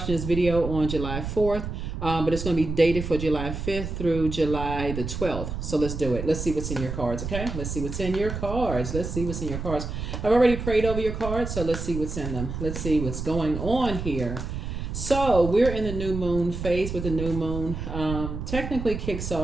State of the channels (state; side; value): noise; right; rumble, 6 dB below the sound